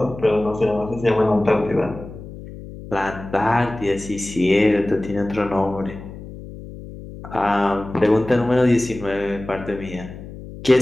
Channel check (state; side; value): noise; left; hum, 14 dB below the sound